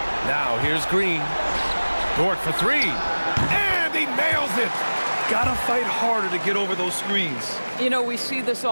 Now here's Green. Dort for three. And he nails it. Gotta fight harder to get over those screens. You know, we see this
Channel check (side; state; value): both; inverted; correlation -1.00